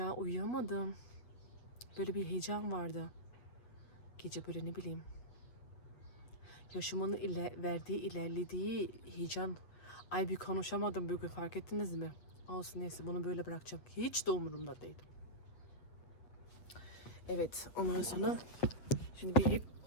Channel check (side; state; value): right; late; 8.2 ms